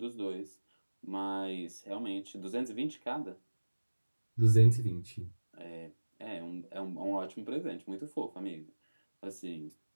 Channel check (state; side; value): inverted; both; correlation -1.00